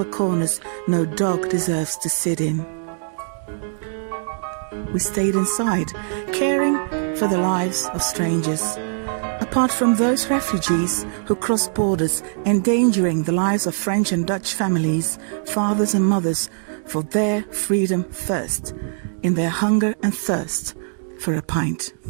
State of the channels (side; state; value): left; silent; digital silence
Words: corners no dog deserves to sit in. We stayed inside, caring for the lives of strangers. Apart from those refugees who crossed borders, endangering the lives of French and Dutch families, fathers and mothers, for their freedom first, in their hunger and thirst for a pint.